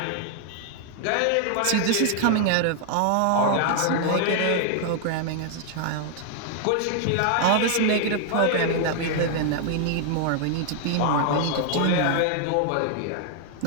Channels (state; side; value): different; both; correlation 0.00